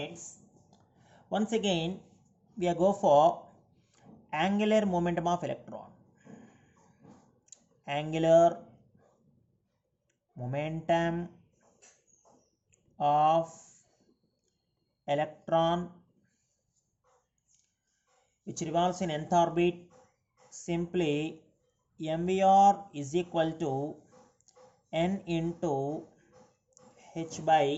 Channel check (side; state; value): both; identical; correlation 1.00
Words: once again we are go for angular momentum of electron. Angular momentum of electron which revolves in nth orbit, simply mvr is equal to n into h by